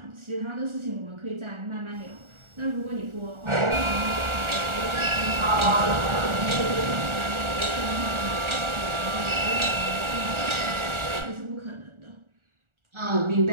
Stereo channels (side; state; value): left; late; 1.4 ms